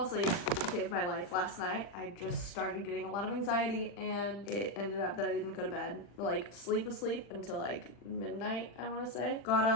asleep. Saved my life last night. I just started getting a lot of anxiety and it ended up that I didn't go to bed. Like sleep until like midnight, I want to say. Got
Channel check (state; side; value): late; right; 40 ms